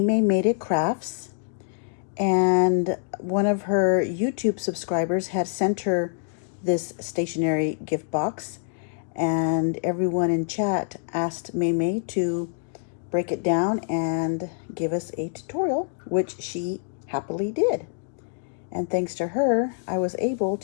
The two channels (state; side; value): silent; right; digital silence